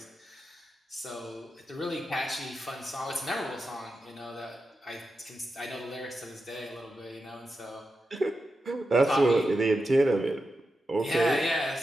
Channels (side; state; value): both; normal; correlation 0.89